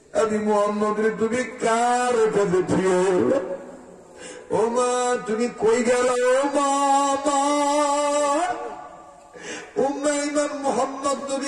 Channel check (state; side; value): identical; both; correlation 1.00